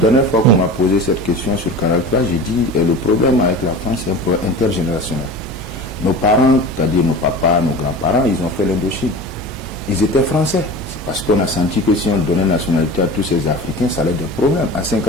fois qu'on m'a posé cette question sur Canal+, j'ai dit le problème avec la France, c'est un problème intergénérationnel. Nos parents, c'est-à-dire nos papas, nos grands-parents, ils ont fait l'Indochine. Ils étaient français. C'est parce qu'on a senti que si on donnait nationalité à tous ces Africains, ça allait être des problèmes. En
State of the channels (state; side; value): normal; both; correlation 0.35